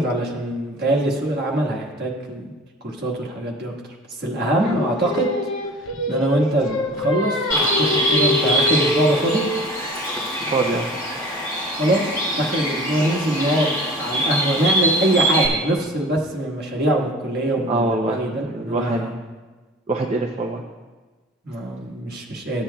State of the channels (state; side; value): normal; both; correlation 0.42